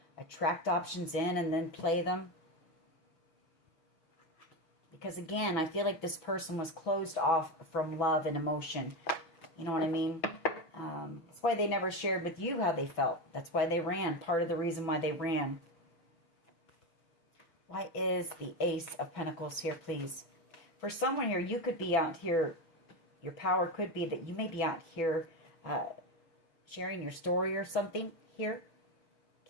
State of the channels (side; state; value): right; late; 6.0 ms